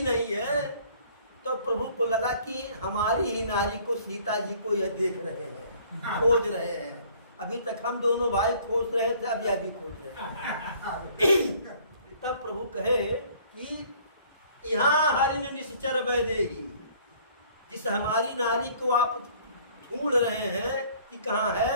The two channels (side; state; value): both; inverted; correlation -0.56